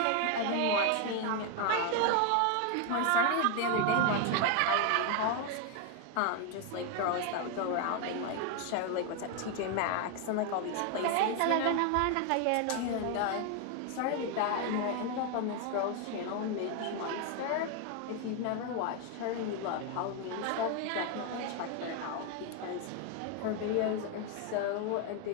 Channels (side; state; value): both; different; correlation 0.01